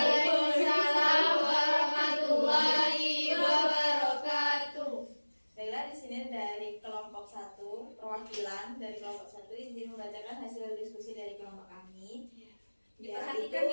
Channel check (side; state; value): both; inverted; correlation -1.00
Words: warahmatullahi wabarakatuh. Baiklah, di sini dari kelompok 1, perwakilan dari kelompok 1 izin membacakan hasil diskusi dari kelompok kami. Diperhatikan